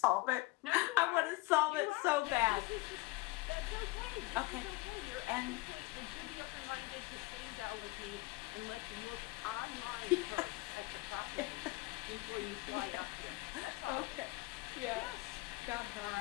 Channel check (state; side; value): quieter; right; 21.8 dB